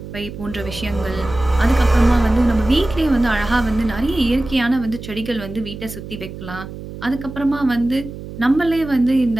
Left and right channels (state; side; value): noise; right; hum, 12 dB below the sound